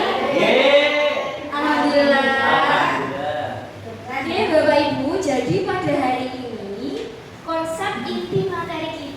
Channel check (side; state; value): both; identical; correlation 1.00